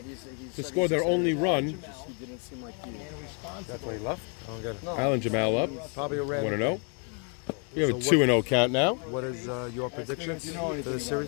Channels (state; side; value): quieter; right; 38.6 dB